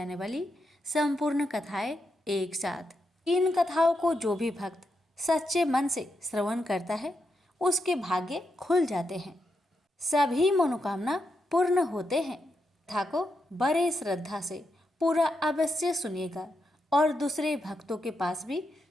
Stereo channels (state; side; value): normal; both; correlation 0.84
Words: वाली संपूर्ण कथाएं एक साथ। इन कथाओं को जो भी भक्त सच्चे मन से श्रवण करता है उसके भाग्य खुल जाते हैं, सभी मनोकामना पूर्ण होते हैं। कथा को बड़े श्रद्धा से पूरा अवश्य सुनिएगा और दूसरे भक्तों के पास भी